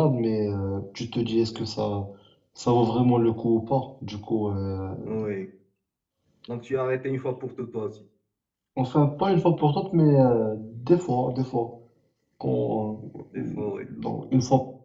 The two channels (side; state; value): both; identical; correlation 1.00